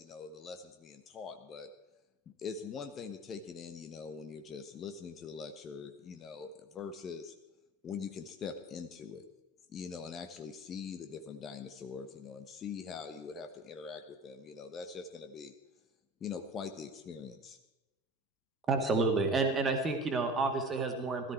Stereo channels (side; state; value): both; normal; correlation 0.39